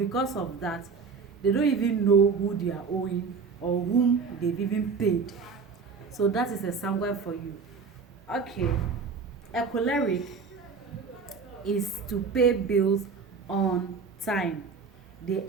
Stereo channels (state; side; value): quieter; left; 5.2 dB